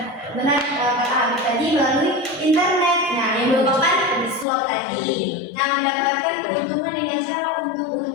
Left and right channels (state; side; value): drops out; right; at 4.5 s